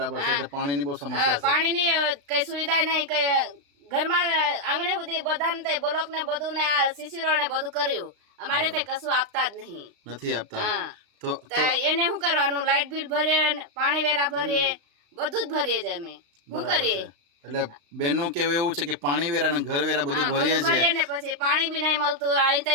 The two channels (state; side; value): late; left; 35 ms